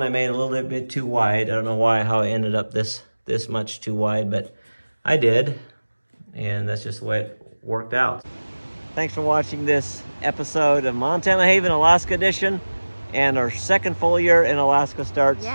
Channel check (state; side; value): inverted; both; correlation -1.00